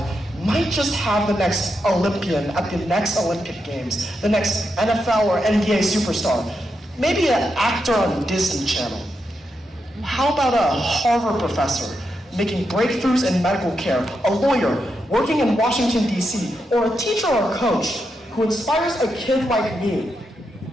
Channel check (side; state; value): both; normal; correlation 0.85